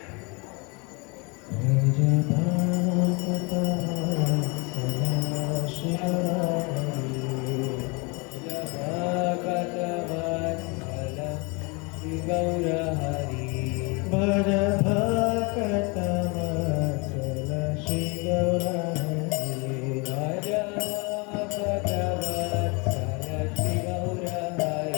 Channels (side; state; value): right; quieter; 29.9 dB